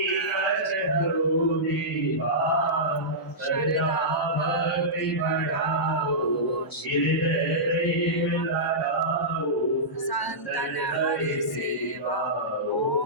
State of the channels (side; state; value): both; normal; correlation -0.15